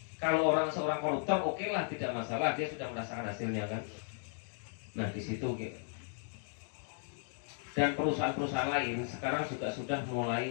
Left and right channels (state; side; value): silent; right; 54 dB below the other